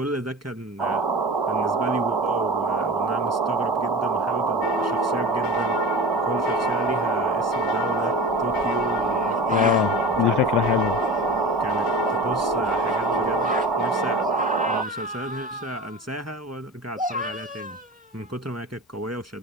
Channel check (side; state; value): both; normal; correlation 0.33